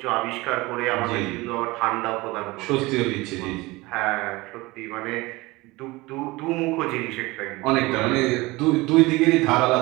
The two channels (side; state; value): left; quieter; 21.8 dB